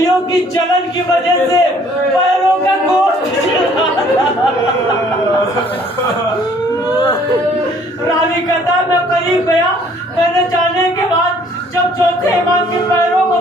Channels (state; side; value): normal; both; correlation 0.59